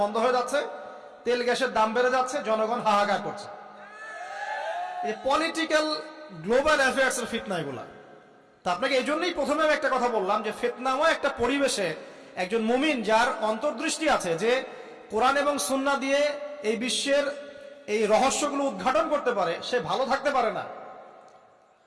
বন্ধ হয়ে যাচ্ছে, তেল গ্যাসের দাম বেড়ে যাচ্ছে, জনগণ হাহাকার করছে। এই পলিটিক্যাল গ্লোবাল অ্যাফেয়ার্স এর ফিতনা এগুলা। তা আপনাকে এই জন্যই প্রথমে একটা কথা বললাম যে ফিতনাময় একটা পরিবেশে একজন মুমিন যার অন্তর্দৃষ্টি আছে, যে কোরআন এবং সুন্নাহ দিয়ে এই বিশ্বের এই রহস্যগুলো উদ্ঘাটন করতে পারে, সে ভালো থাকতে পারে না।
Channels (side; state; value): both; identical; correlation 1.00